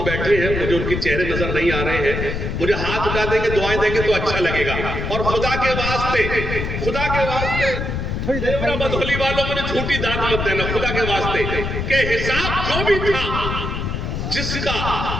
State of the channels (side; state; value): left; noise; rumble, 3 dB below the sound